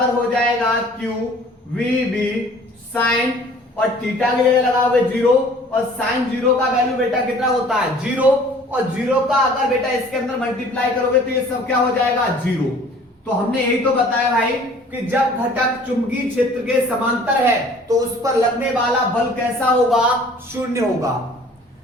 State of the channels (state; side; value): normal; both; correlation 0.51